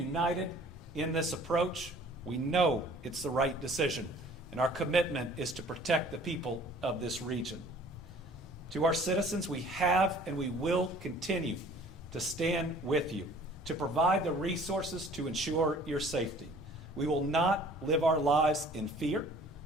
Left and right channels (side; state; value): both; normal; correlation 0.52